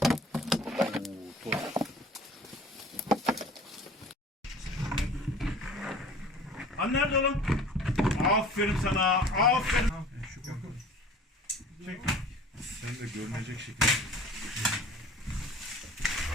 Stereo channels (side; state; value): both; normal; correlation 0.45